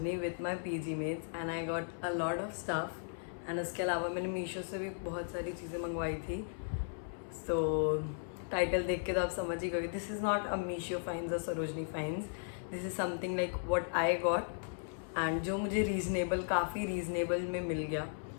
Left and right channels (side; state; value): right; silent; 54 dB below the other